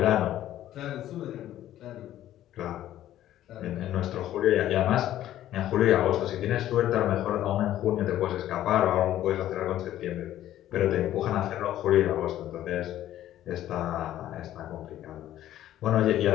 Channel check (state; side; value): quieter; right; 12.8 dB